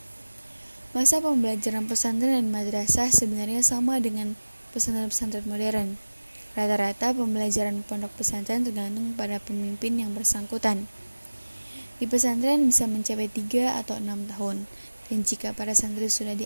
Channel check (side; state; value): both; inverted; correlation -1.00